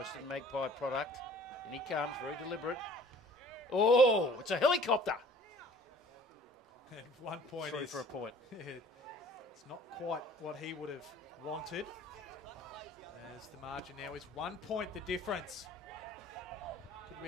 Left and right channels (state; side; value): normal; both; correlation 0.51